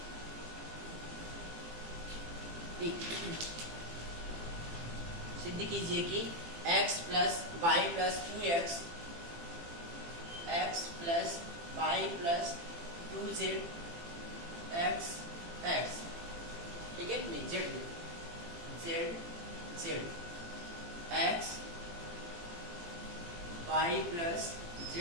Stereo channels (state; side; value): late; left; 18 ms